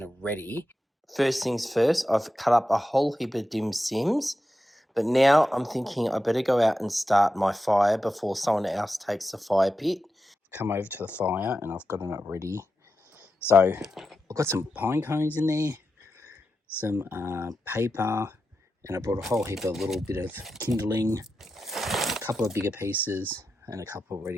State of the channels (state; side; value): normal; both; correlation 0.90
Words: ready. First things first, I've cut up a whole heap of dim sims, but now I'm thinking I better go out and start my fire before someone else takes the fire pit. Come over to the fire, and I've gotten it ready. So I've got some pine cones in there, some paper, and I brought a whole heap of little bit of kindling, a couple of bigger pieces, and a couple